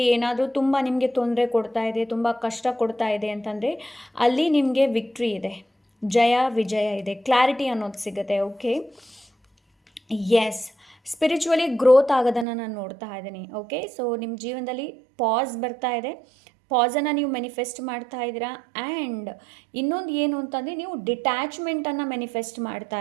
ಏನಾದರೂ ತುಂಬ ನಿಮಗೆ ತೊಂದರೆ ಕೊಡ್ತಾ ಇದೆ, ತುಂಬ ಕಷ್ಟ ಕೊಡ್ತಾ ಇದೆ ಅಂತಂದರೆ ಅಲ್ಲಿ ನಿಮಗೆ ವಿಕ್ಟ್ರಿ ಇದೆ, ಜಯ ವಿಜಯ ಇದೆ, ಕ್ಲಾರಿಟಿ ಅನ್ನೋದು ಸಿಗುತ್ತೆ. ಓಕೆ, ಎಸ್, ಸ್ಪಿರಿಚುವಲಿ ಗ್ರೋತ್ ಆಗೋದನ್ನು ನಾನು ನೋಡ್ತಾ ಇದ್ದೀನಿ. ಓಕೆ, ಸೊ ನಿಮ್ಮ ಜೀವನದಲ್ಲಿ ಪಾಸ್ ಬರ್ತಾ ಇದೆ, ಪಾಸನ್ನು ನೀವು ಮ್ಯಾನಿಫೆಸ್ಟ್ ಮಾಡ್ತಾ ಇದ್ದೀರಾ. ಆ್ಯಂಡ್ ಇನ್ನೊಂದು ಏನು ಅಂತಂದರೆ ನೀವು ಡಿಟ್ಯಾಚ್ಮೆಂಟನ್ನು ಮ್ಯಾನಿಫೆಸ್ಟ್ ಮಾಡ್ತಾ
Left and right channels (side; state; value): left; drops out; at 12.5 s